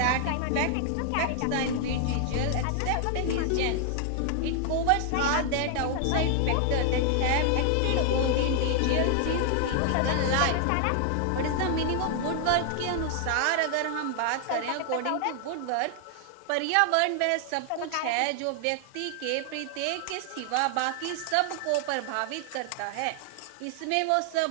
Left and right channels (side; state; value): both; different; correlation 0.00